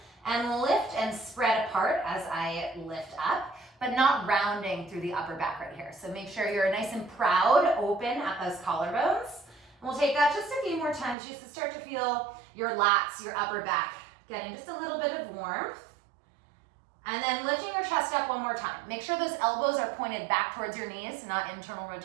and lift and spread apart as I lift up, but not rounding through the upper back right here. So make sure you're nice and proud, open at those collarbones. And we'll take that just a few more times just to start to feel your lats, your upper back, getting just a little bit of warmth. And then lifting your chest up one more time. Make sure those elbows are pointed back towards your knees, not internal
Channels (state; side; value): drops out; left; at 11.2 s